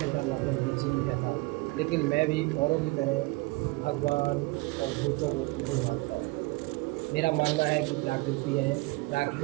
लगभग बिजी ही रहता हूँ। लेकिन मैं भी औरों की तरह भगवान और भूतों को नहीं मानता हूँ। मेरा मानना है कि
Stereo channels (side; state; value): left; quieter; 23.8 dB